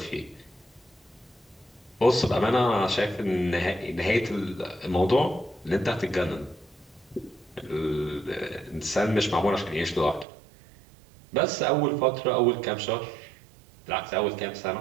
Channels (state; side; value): drops out; left; at 10.2 s